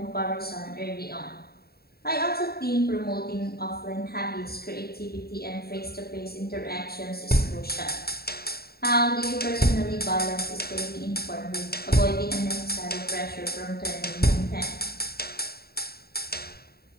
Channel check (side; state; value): right; late; 0.45 ms